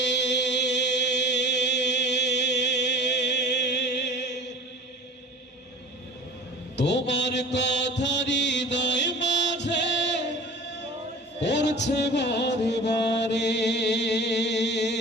তোমার কথা হৃদয় মাঝে পড়ছে বারে বারে।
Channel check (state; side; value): normal; both; correlation 0.40